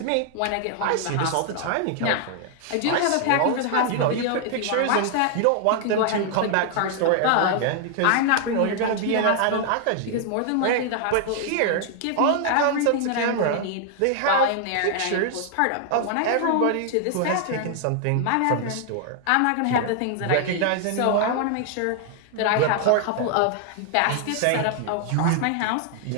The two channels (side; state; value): both; different; correlation 0.00